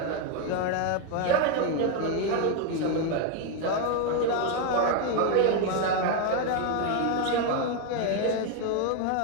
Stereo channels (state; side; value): different; both; correlation 0.01